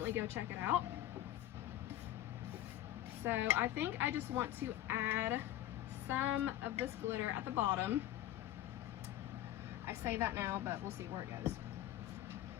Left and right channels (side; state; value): right; quieter; 13.5 dB